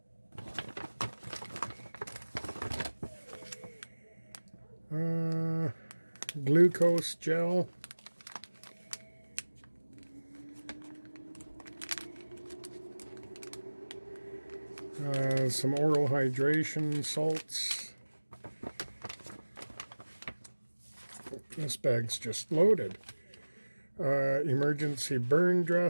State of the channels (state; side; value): inverted; both; correlation -1.00